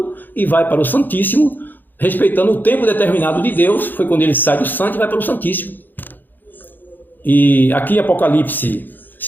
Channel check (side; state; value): right; late; 0.089 ms